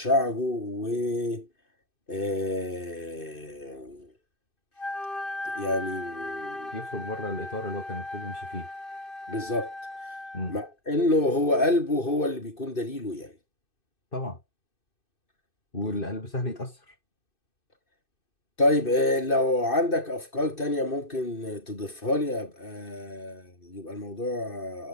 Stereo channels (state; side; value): late; right; 2.6 ms